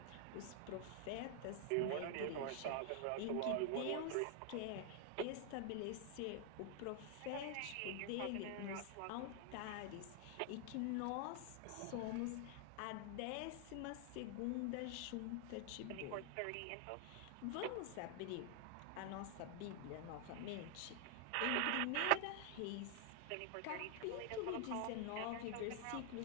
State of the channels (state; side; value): different; both; correlation 0.00